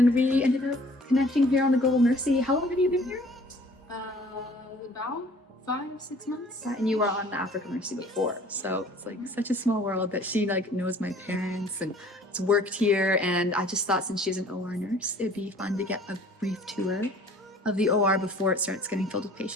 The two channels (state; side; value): normal; both; correlation 0.52